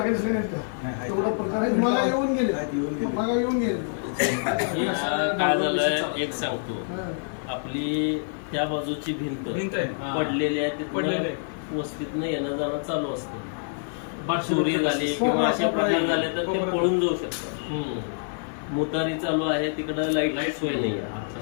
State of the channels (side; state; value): right; silent; digital silence